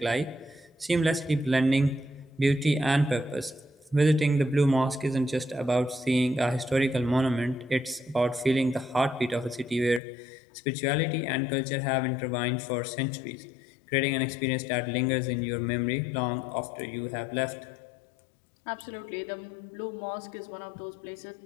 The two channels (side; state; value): right; drops out; at 10.0 s